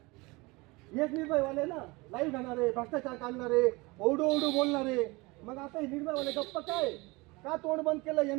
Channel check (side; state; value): left; quieter; 24.3 dB